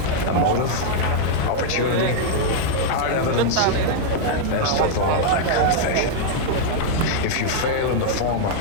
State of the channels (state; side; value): different; both; correlation -0.01